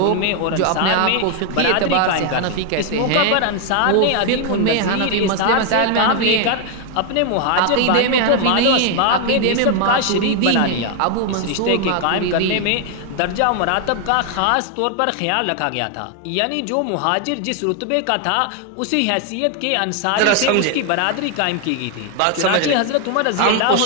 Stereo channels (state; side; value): different; both; correlation 0.01